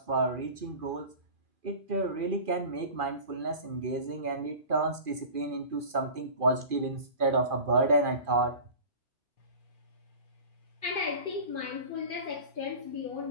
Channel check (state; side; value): late; left; 2.4 ms